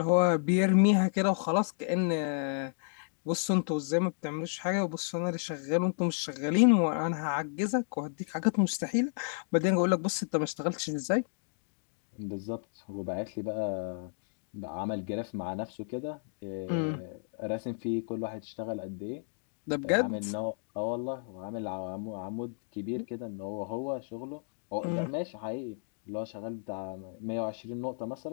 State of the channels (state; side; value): silent; right; digital silence